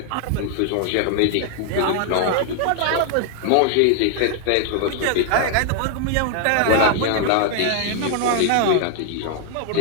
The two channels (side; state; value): both; different; correlation 0.00